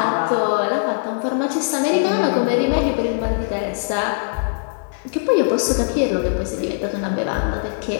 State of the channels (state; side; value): silent; right; 65 dB below the other